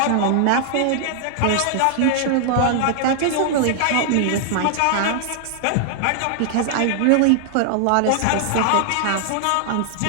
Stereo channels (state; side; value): different; both; correlation -0.01